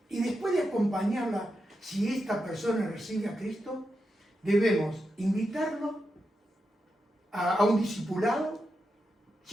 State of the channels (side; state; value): both; normal; correlation 0.87